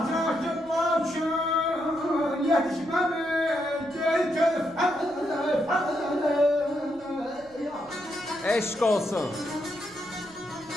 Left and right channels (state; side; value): noise; right; rumble, 26 dB below the sound